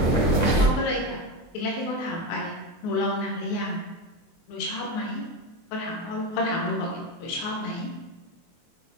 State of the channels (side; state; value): right; late; 24 ms